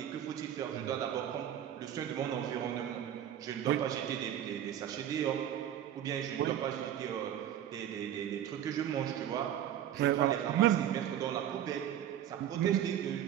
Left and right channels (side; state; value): left; quieter; 10.7 dB